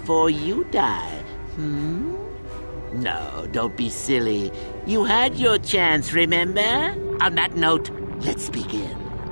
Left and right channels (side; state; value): both; inverted; correlation -1.00